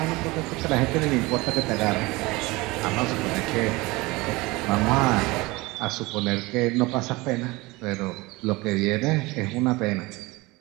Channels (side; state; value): left; quieter; 22.5 dB